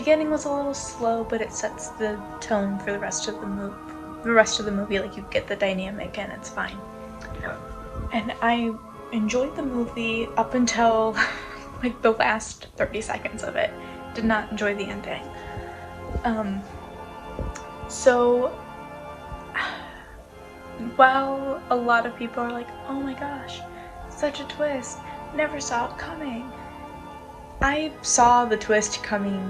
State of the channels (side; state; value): both; identical; correlation 1.00